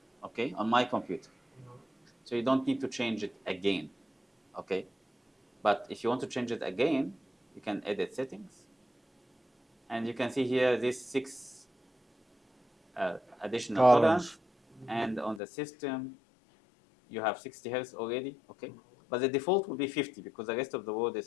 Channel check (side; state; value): right; drops out; at 15.4 s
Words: okay, on my computer. Mhm. So you don't need to change it again, okay? But if you want to change it again, you can edit settings. And you can see here these 6 additional tolerance. And on the system, you have 60 Hertz already, okay? But the default will be 50 because the rest of the world